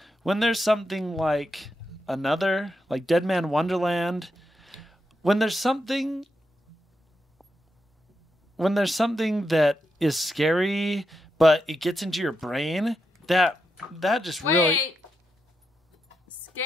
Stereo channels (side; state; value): both; normal; correlation 0.84